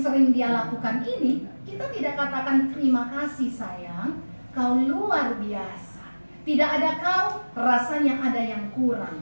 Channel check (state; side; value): inverted; both; correlation -1.00